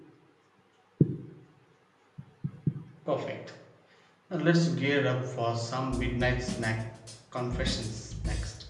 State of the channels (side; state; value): both; identical; correlation 1.00